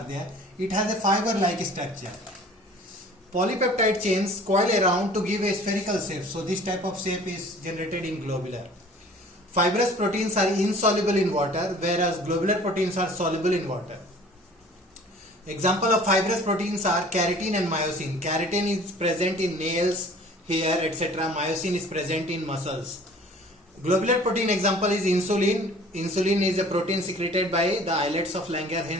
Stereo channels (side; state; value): both; normal; correlation 0.48